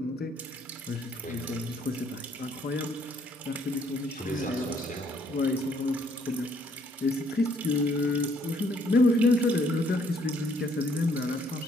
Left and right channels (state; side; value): normal; both; correlation 0.66